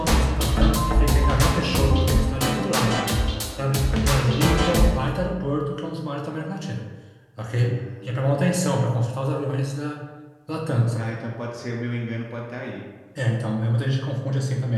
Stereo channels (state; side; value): identical; both; correlation 1.00